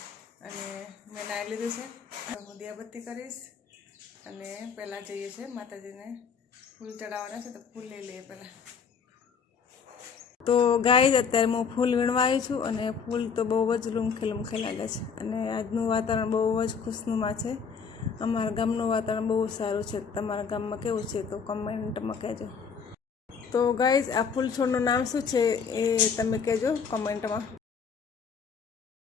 અને મેં નાહી લીધું છે. હું દિયાબત્તી કરીશ અને પહેલાં જઈએ છીએ માતાજીને ફૂલ ચડાવવાના છે, તો ફૂલ લઈ લઈએ પહેલાં. તો ગાઈઝ, અત્યારે હું ફૂલ વીણવા આવી છું અને ફૂલ તો બહુ જ લૂમખે લાગે છે અને આજનું વાતાવરણ બહુ જ ખુશનુમા છે. અમારા ગામનું વાતાવરણ બહુ સારું છે. તમારા ગામમાં કેવું છે તો કમેન્ટમાં કહેજો. તો ગાઈઝ, આ ફૂલ છોડનું નામ શું છે એ તમે કહેજો કમેન્ટમાં.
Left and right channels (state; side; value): quieter; right; 6.1 dB